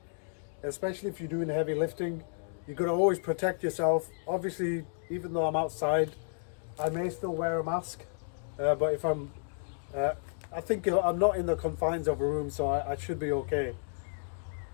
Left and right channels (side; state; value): right; silent; digital silence